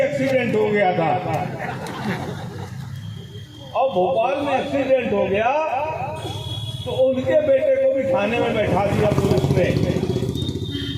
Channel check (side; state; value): both; identical; correlation 1.00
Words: एक्सीडेंट हो गया था, और भोपाल में एक्सीडेंट हो गया तो उनके बेटे को भी थाने में बैठा दिया पुलिस ने।